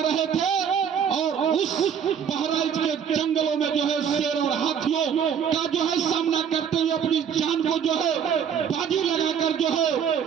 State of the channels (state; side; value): quieter; left; 7.7 dB